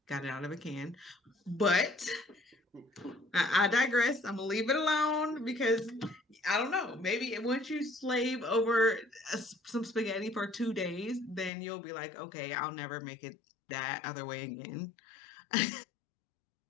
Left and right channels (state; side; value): drops out; right; at 11.5 s